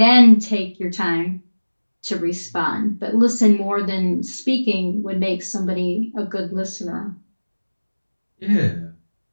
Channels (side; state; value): both; inverted; correlation -1.00